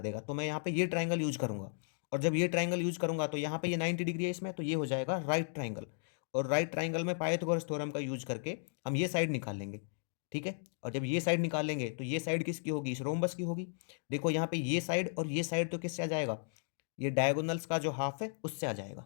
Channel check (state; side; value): silent; right; digital silence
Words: देगा। तो मैं यहाँ पे ये ट्राइंगल यूज करूंगा और जब ये ट्राइंगल यूज करूंगा तो यहाँ पे ये 90 डिग्री है इसमें, तो ये हो जाएगा राइट ट्राइंगल। और राइट ट्राइंगल में पाइथागोरस थ्योरम का यूज करके हम ये साइड निकाल लेंगे, ठीक है। और जब ये साइड निकाल लेंगे तो ये साइड किसकी होगी? इस रोम्बस की होगी। देखो यहाँ पे ये साइड और ये साइड तो किससे आ जाएगा? ये डायगोनल्स का जो हाफ है उससे आ